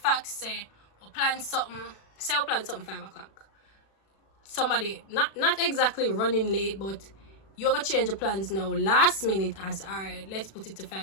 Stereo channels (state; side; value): late; right; 36 ms